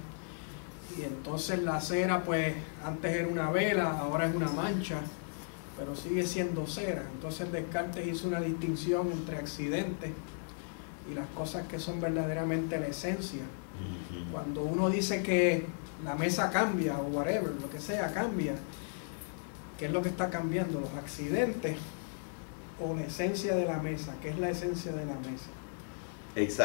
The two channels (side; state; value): right; silent; digital silence